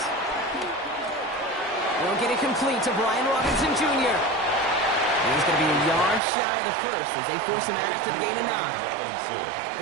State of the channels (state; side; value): drops out; left; at 6.2 s